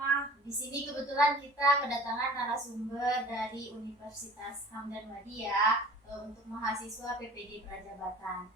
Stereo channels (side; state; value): both; normal; correlation 0.45